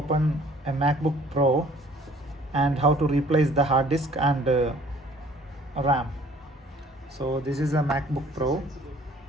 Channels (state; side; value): normal; both; correlation 0.55